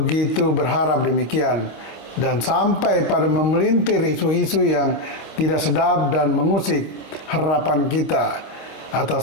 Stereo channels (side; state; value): right; late; 25 ms